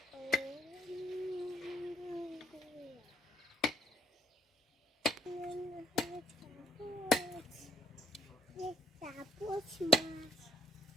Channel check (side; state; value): both; normal; correlation 0.69